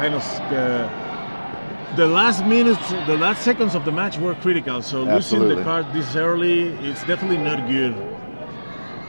of the last minutes, the last seconds of the match were critical. So losing Absolutely. the card this early, it's definitely not good.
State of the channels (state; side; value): inverted; both; correlation -1.00